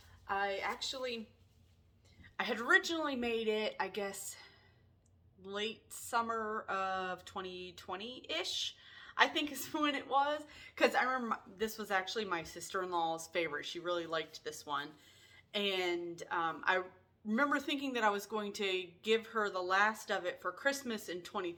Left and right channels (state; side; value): identical; both; correlation 1.00